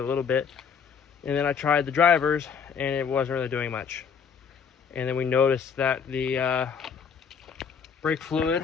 little bit. And then I tried the drivers, and it wasn't really doing much. And then we noticed that the brake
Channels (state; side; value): quieter; right; 6.6 dB